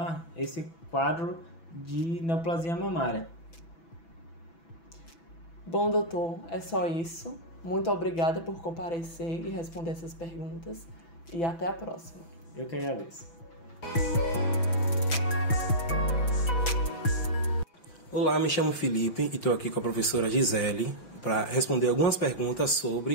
esse quadro de neoplasia mamária. Bom, doutor, é só isso. Muito obrigada por comparecer e responder essas perguntas e até a próxima. Eu que agradeço. Olá, me chamo Felipe e estou aqui com a professora Gisele para responder algumas perguntas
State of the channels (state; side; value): late; right; 6.0 ms